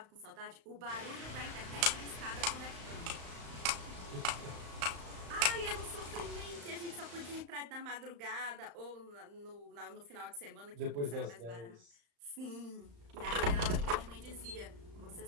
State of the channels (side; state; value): left; late; 35 ms